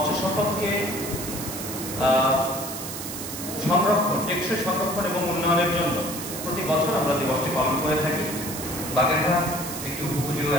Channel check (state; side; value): noise; right; hiss, 8 dB below the sound